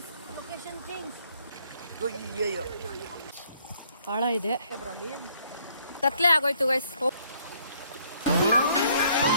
ಲೊಕೇಶನ್ ಚೇಂಜ್. ಆಳ ಇದೆ, ಕತ್ಲೆ ಆಗೋಯ್ತು guys.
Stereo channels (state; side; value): inverted; both; correlation -0.65